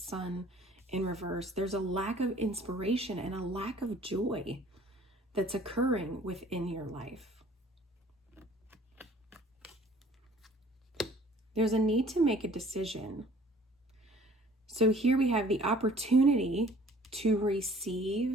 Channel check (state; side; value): normal; both; correlation 0.53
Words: in reverse. There's a lack of inspiration and a lack of joy that's occurring within your life. There's a need to make a decision. So here we have the opportunity to